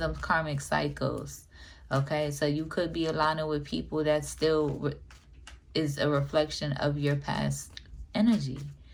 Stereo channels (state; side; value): identical; both; correlation 1.00